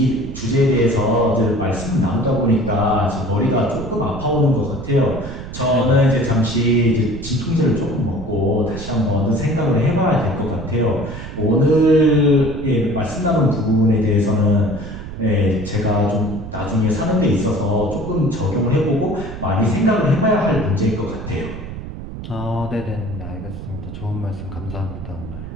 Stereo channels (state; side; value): noise; right; rumble, 10 dB below the sound